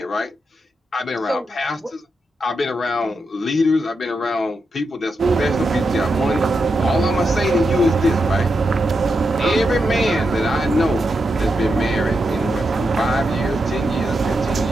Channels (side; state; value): both; normal; correlation 0.86